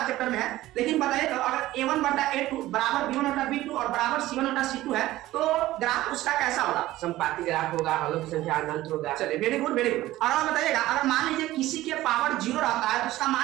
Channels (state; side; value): quieter; left; 16.1 dB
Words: चैप्टर में है। लेकिन बताइए तो अगर a1 बटा a2 बराबर b1 बटा b2 और बराबर c1 बटा c2 है, तो ग्राफ उसका कैसा होगा? संपाती ग्राफ होगा, हलों की संख्या अनंत होगा। चलिए वेरी गुड वेरी गुड। और आप बताइएगा, अगर मान लीजिए किसी के पावर 0 रहता है तो उसका